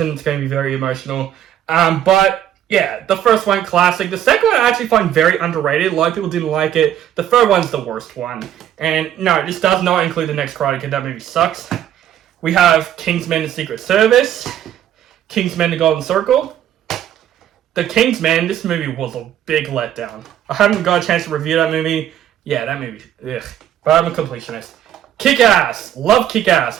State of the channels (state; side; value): quieter; left; 10.9 dB